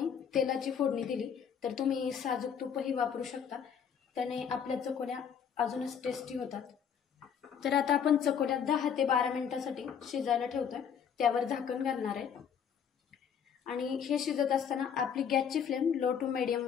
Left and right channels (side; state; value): right; quieter; 7.7 dB